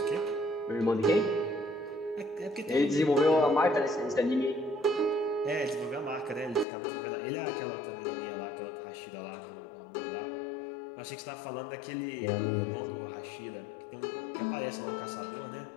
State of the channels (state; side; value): drops out; right; at 6.7 s